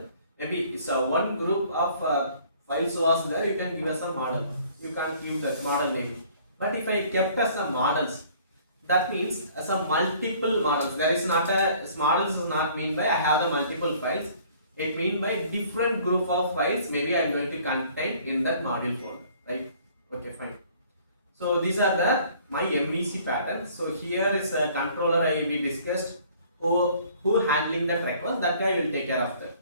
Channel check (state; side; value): inverted; both; correlation -0.55